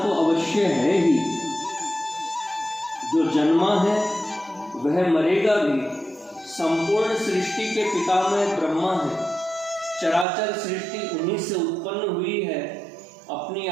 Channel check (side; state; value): left; drops out; at 10.2 s